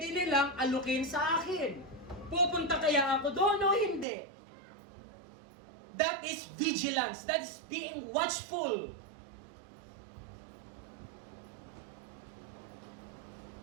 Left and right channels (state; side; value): drops out; left; at 4.0 s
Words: nilang alukin sa akin? Pupunta kaya ako doon o hindi? That is vigilance. That is being watchful.